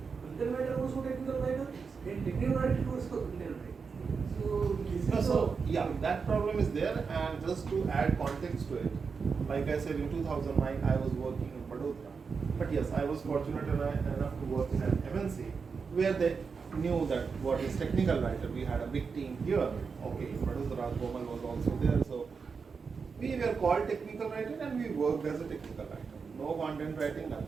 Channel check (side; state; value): left; quieter; 5.4 dB